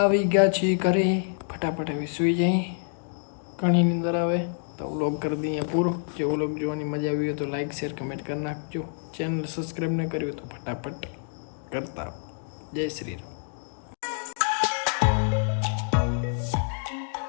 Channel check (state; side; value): silent; right; digital silence